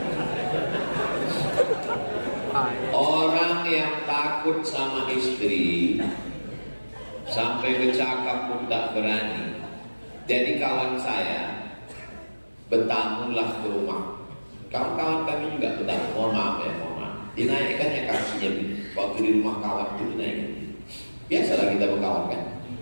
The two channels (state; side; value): inverted; both; correlation -1.00